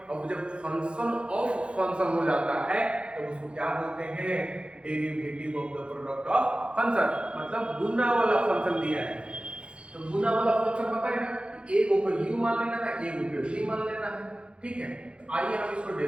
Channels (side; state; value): left; late; 0.056 ms